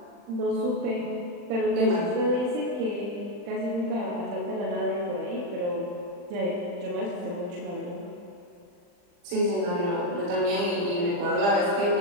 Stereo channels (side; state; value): left; late; 40 ms